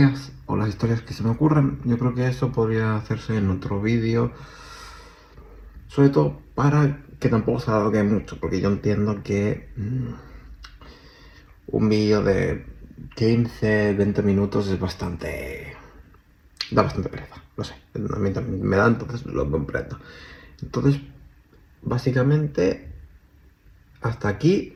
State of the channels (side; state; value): both; identical; correlation 1.00